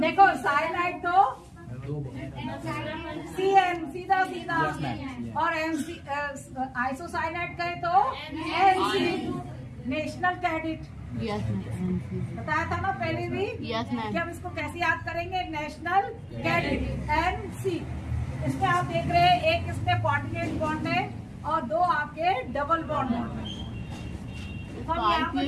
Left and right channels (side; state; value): both; identical; correlation 1.00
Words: साइनाइड तो CN सीधा और आइसोसाइनाइड कहे तो NC, national cadet. Yes ma'am. बताया था ना पहले भी? Yes ma'am. कि हम इसको कैसे याद करेंगे? National cadet NC। इसमें आप देख रहे हैं एक इसमें कोऑर्डिनेट बॉन्ड है और दो आपके डबल बॉन्ड है। हम यहाँ पर